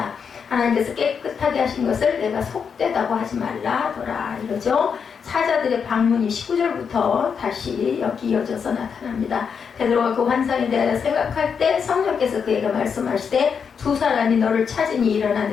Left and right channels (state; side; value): quieter; right; 6.5 dB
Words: 하나님께서 깨끗하게 하신 것을 내가 속되다고 하지 말라 하더라 이러죠. 사자들의 방문이 19절부터 다시 여기 이어져서 나타납니다. 베드로가 그 환상에 대하여 생각할 때 성령께서 그에게 말씀하시되 두 사람이 너를 찾으니 일어나